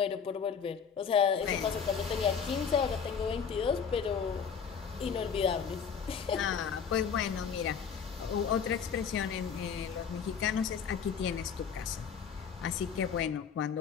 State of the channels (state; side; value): quieter; right; 6.8 dB